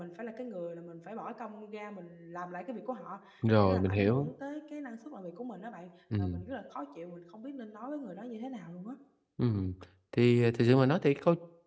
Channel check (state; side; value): identical; both; correlation 1.00